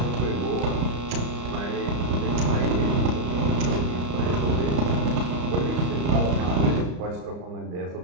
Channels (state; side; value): late; left; 34 ms